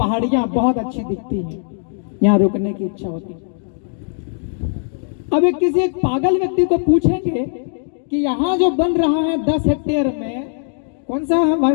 बहुत अच्छी दिखती हैं, यहाँ रुकने की इच्छा होती है। अब एक पागल व्यक्ति को पूछेंगे कि यहाँ जो बन रहा है 10 हेक्टेयर में, कौन सा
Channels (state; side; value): silent; right; digital silence